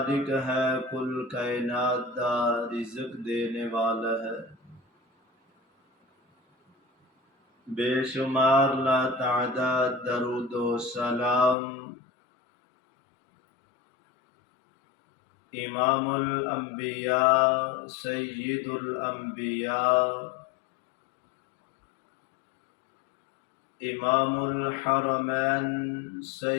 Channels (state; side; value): drops out; right; at 11.6 s